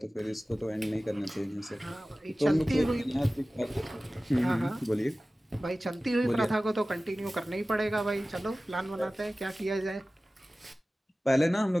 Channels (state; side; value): normal; both; correlation 0.97